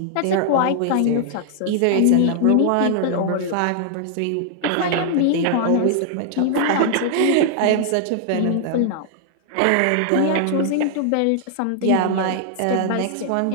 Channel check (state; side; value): different; both; correlation -0.01